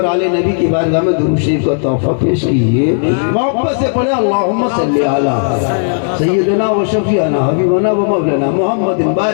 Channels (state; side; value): silent; right; digital silence